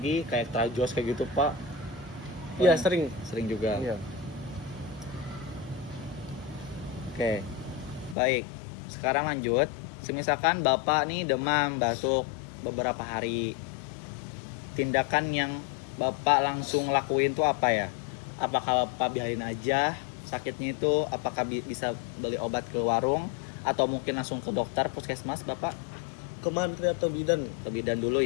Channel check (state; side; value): drops out; right; at 8.2 s